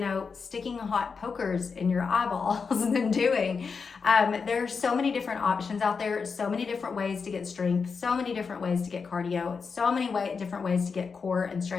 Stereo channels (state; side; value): quieter; right; 5.3 dB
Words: sticking hot pokers in your eyeballs than doing. There's so many different options out there, so many different ways to get strength, so many different ways to get cardio, so many different ways to get core and